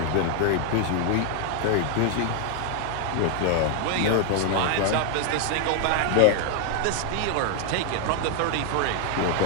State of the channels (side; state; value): both; different; correlation 0.00